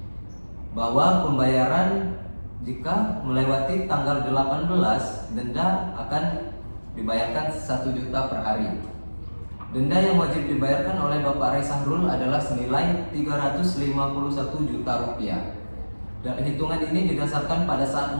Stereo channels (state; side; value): inverted; both; correlation -1.00